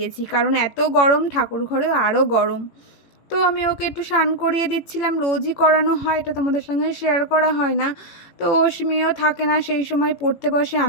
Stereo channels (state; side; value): late; right; 18 ms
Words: কারণ এত গরম, ঠাকুর ঘরেও আরও গরম। তো আমি ওকে একটু স্নান করিয়ে দিচ্ছিলাম, রোজই করানো হয়, এটা তোমাদের সঙ্গে শেয়ার করা হয় না। তো অশ্মিও থাকে না সেই সময়, পড়তে বসে,